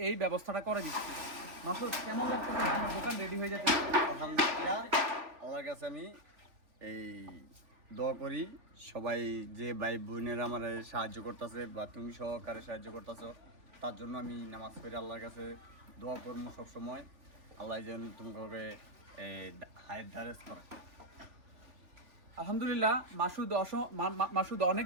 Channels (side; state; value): left; late; 3.4 ms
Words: এই ব্যবস্থাটা করে দিচ্ছি। মাসুদ, কেমন লাগছে আমার দোকান রেডি হয়ে যাচ্ছে? আলহামদুলিল্লাহ, আল্লাহর কাছে আমি এই দোয়া করি সবাই যে ভাই বোনেরা আমার সাহায্য করতেছে বা তুমি সহকারে সাহায্য করতেছো, তার জন্য আমি নামাজ পড়ে আল্লাহর কাছে দোয়া করবো সবসময়। আল্লাহ যেন তোমাকে হায়াত দারাজ করে। আলহামদুলিল্লাহ, মাসুদ